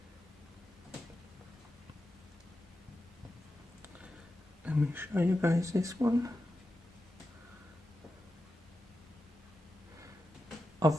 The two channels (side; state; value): both; normal; correlation 0.90